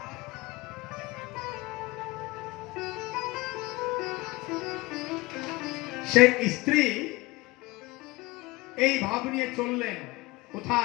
সেই স্ত্রী এই ভাব নিয়ে চললেন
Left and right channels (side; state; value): right; quieter; 21.7 dB